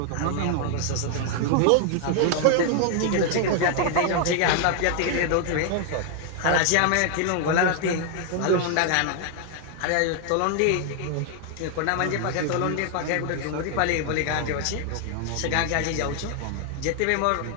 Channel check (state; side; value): different; both; correlation 0.00